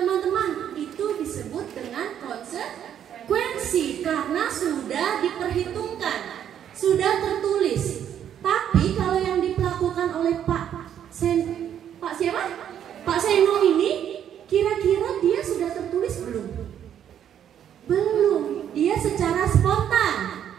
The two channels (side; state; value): left; quieter; 9.7 dB